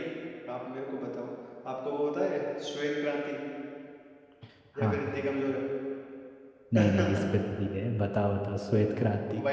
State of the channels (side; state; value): both; identical; correlation 1.00